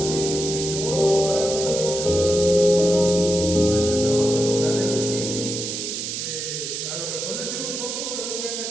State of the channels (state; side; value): noise; right; hiss, 4 dB below the sound